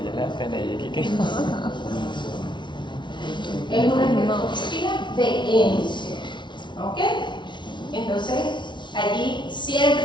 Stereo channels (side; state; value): right; late; 0.23 ms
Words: ya le da pena y aquí que. Es una espectroscopía de emisión. ¿Ok? Entonces, allí